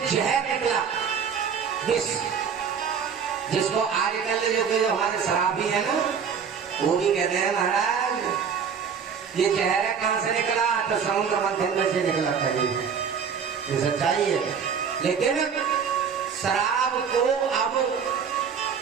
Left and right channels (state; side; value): quieter; left; 6.8 dB